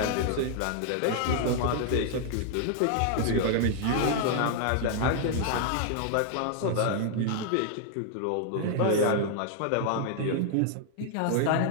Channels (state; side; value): different; both; correlation 0.00